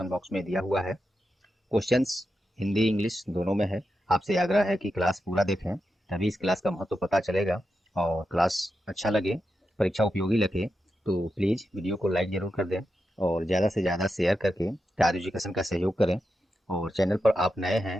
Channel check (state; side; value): normal; both; correlation 0.88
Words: बॉक्स में दिया हुआ है। क्वेश्चंस हिंदी इंग्लिश दोनों में है। आपसे आग्रह है कि क्लास पूरा देखें, तभी इस क्लास का महत्व पता चलेगा। और क्लास अच्छा लगे, परीक्षा उपयोगी लगे तो प्लीज़ वीडियो को लाइक ज़रूर कर दें और ज़्यादा से ज़्यादा शेयर करके तार एजुकेशन का सहयोग करें। और चैनल पर आप नए